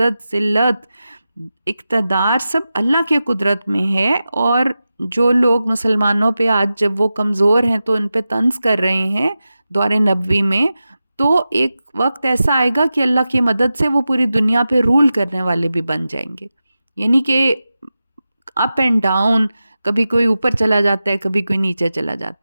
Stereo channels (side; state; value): both; inverted; correlation -0.93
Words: ذلت اقتدار سب اللہ کے قدرت میں ہے، اور جو لوگ مسلمانوں پہ آج جب وہ کمزور ہیں تو ان پہ طنز کر رہے ہیں دور نبوی میں، تو ایک وقت ایسا آئے گا کہ اللہ کی مدد سے وہ پوری دنیا پہ رول کرنے والے بھی بن جائیں گے، یعنی کہ اپ اینڈ ڈاؤن، کبھی کوئی اوپر چلا جاتا ہے کبھی کوئی نیچے چلا